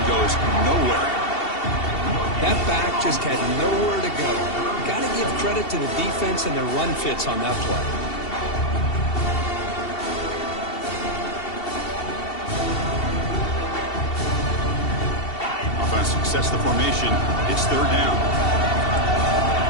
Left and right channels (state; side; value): late; right; 2.7 ms